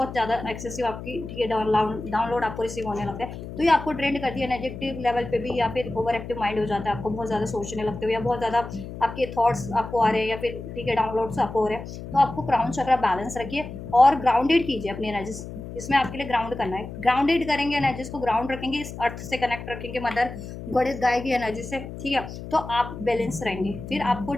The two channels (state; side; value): noise; left; hum, 10 dB below the sound